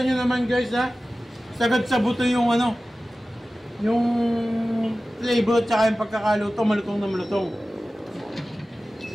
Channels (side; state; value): both; normal; correlation 0.96